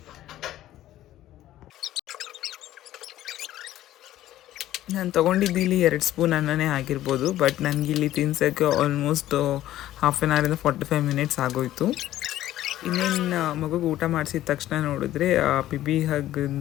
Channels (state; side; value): quieter; right; 13.8 dB